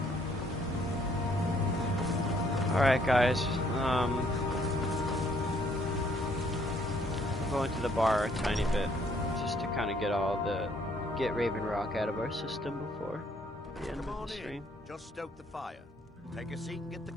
Alright guys, I'm going to the bar a tiny bit, just to kind of get Raven Rock out of our system before the end of the stream. Just stoke the fire. Take a seat and get the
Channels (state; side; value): normal; both; correlation 0.66